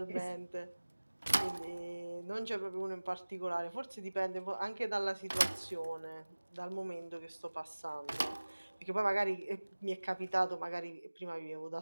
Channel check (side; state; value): both; inverted; correlation -1.00